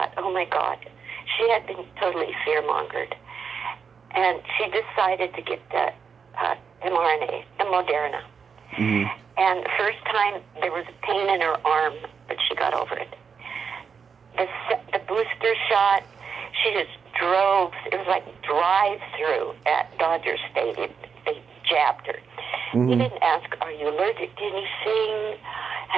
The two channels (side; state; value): left; quieter; 6.2 dB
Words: oh my God. She had been totally fear-mongered. And she decided to get the mRNA, the Moderna. Mm-hmm. And the first time, there was a pain in her arm, but she got over it. The booster shot, she just drove. It was like drive-through at Dodger Stadium. They jabbed her. Mm-hmm. They didn't ask, are you allergic to anything?